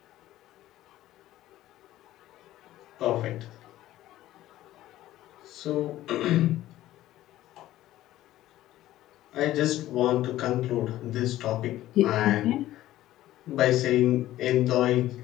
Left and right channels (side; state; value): right; quieter; 14.6 dB